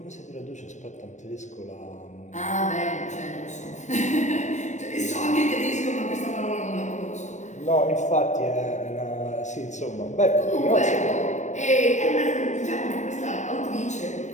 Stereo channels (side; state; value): right; late; 0.34 ms